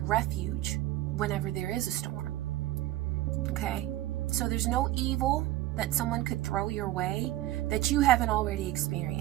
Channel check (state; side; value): quieter; left; 15.6 dB